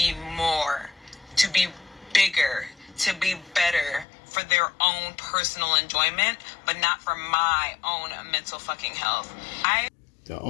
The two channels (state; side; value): drops out; right; at 4.0 s